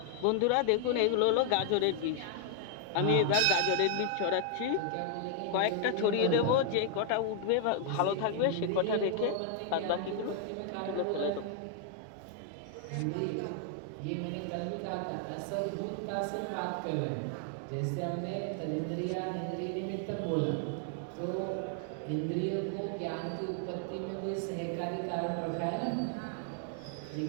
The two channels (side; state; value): both; different; correlation 0.00